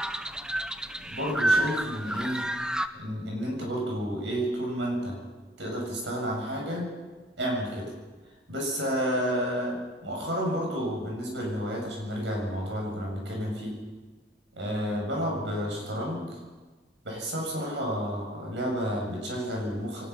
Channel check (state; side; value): normal; both; correlation 0.54